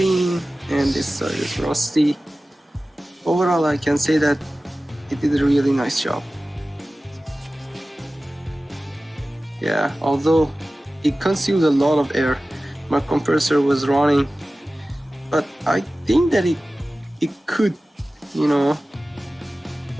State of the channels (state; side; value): normal; both; correlation 0.96